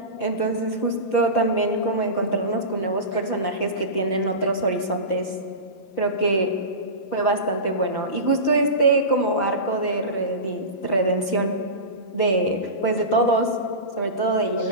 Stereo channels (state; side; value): late; right; 5.3 ms